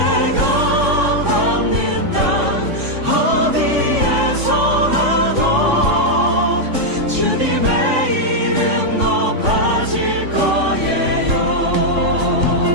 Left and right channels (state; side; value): late; left; 3.5 ms